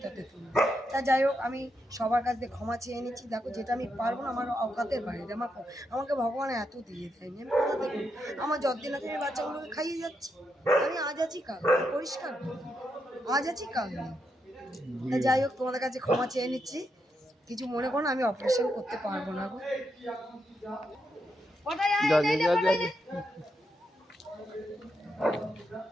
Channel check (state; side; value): normal; both; correlation 0.82